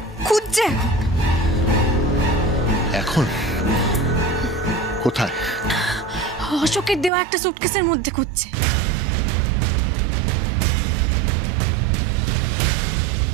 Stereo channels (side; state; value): left; drops out; at 7.1 s